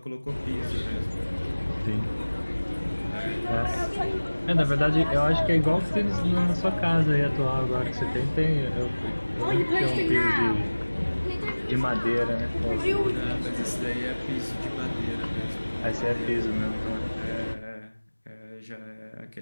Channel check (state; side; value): inverted; both; correlation -1.00